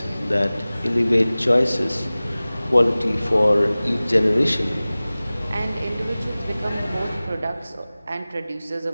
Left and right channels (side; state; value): both; inverted; correlation -0.98